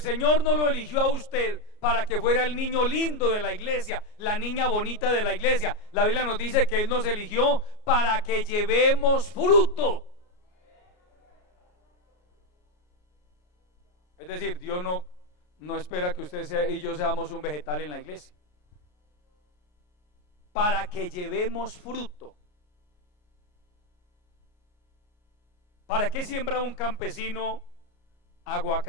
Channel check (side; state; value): right; late; 33 ms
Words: no lo eligió a usted para que fuera el niño lindo de la iglesia, la niña bonita de la iglesia. La Biblia nos dice que Él nos eligió para que llevemos fruto. Es decir, Dios no espera que usted y yo seamos un vegetal en la iglesia. Para que llevemos fruto. ¿Para qué siembra un campesino